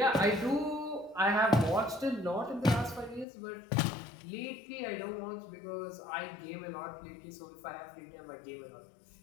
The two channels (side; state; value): right; drops out; at 3.2 s